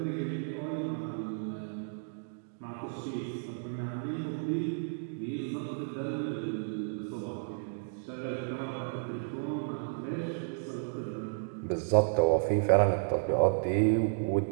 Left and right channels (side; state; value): left; silent; digital silence